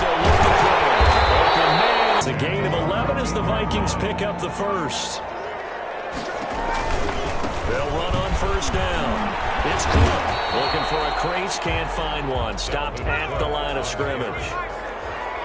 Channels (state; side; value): identical; both; correlation 1.00